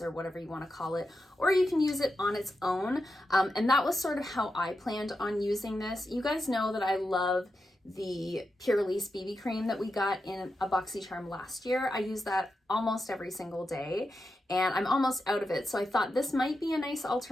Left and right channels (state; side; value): normal; both; correlation 0.88